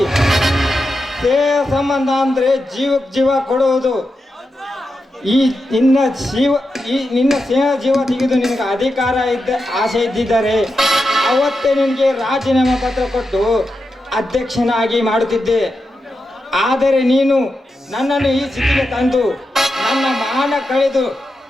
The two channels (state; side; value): normal; both; correlation 0.88